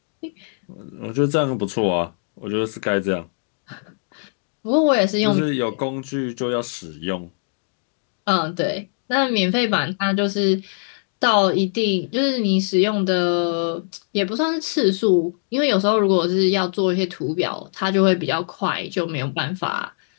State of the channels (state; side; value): silent; right; digital silence